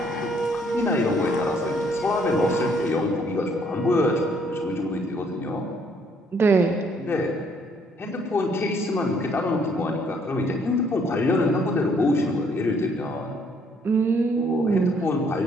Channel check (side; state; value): both; normal; correlation 0.66